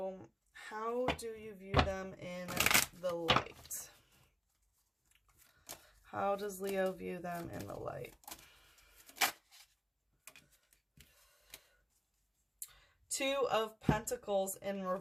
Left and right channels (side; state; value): both; identical; correlation 1.00